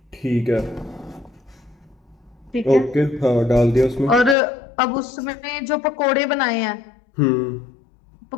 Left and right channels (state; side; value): drops out; right; at 4.4 s